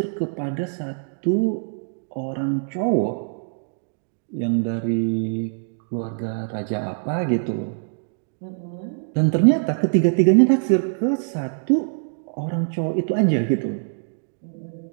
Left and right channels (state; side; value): silent; left; digital silence